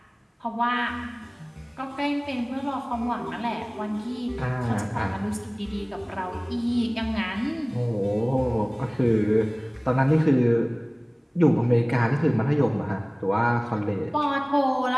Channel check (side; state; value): both; identical; correlation 1.00